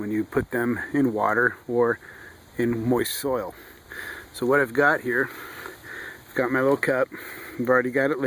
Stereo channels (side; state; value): both; identical; correlation 1.00